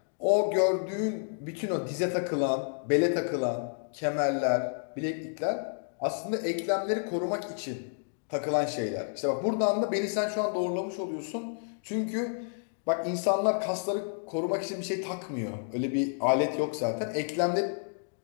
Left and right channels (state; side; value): silent; right; digital silence